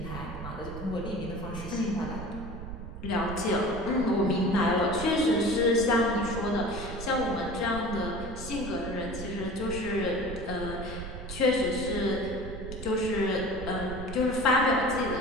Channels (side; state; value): right; noise; rumble, 9 dB below the sound